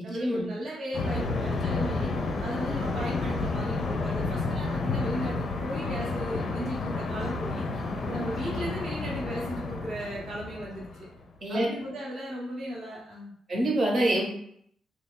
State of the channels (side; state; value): both; normal; correlation 0.77